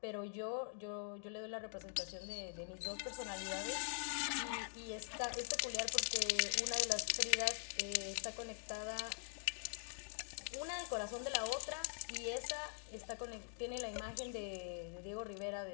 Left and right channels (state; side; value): silent; right; digital silence